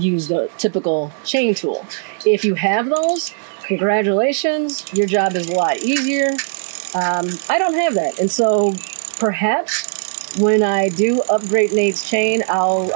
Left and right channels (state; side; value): silent; left; digital silence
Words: the typical chain tool. If you have those, congratulations, your job is a lot easier. I don't have that, and so perhaps when I do upgrade Nate's chain,